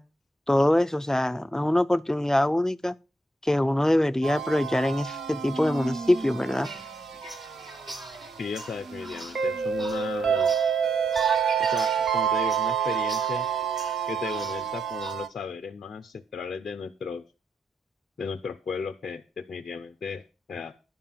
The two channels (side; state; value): both; normal; correlation 0.81